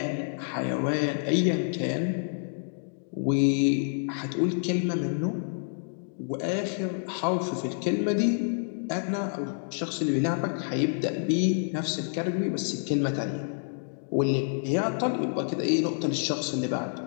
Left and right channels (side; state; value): right; silent; digital silence